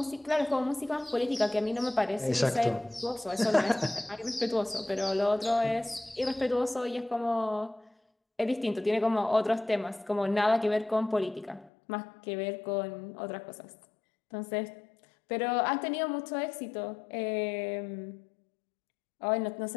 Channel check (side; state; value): right; drops out; at 11.7 s